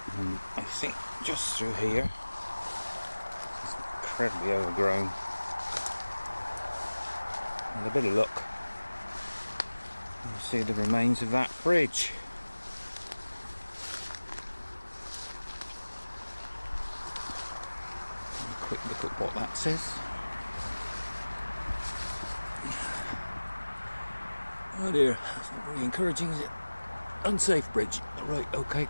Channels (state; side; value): inverted; both; correlation -1.00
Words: and I think just through here. It's incredibly overgrown. With a bit of luck, you'll see the remains of that bridge. A quick look at what that says. Oh dear, that's not very encouraging, is it? Unsafe bridge. Right, okay,